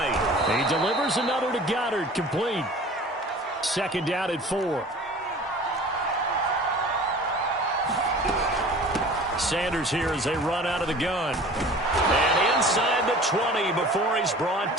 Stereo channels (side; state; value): both; normal; correlation 0.43